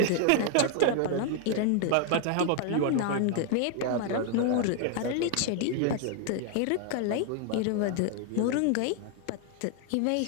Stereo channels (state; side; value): different; both; correlation 0.01